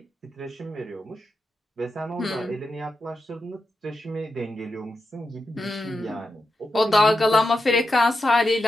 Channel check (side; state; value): both; normal; correlation 0.88